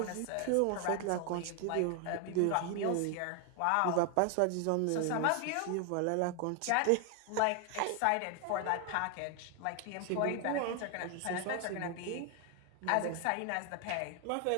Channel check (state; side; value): different; both; correlation 0.00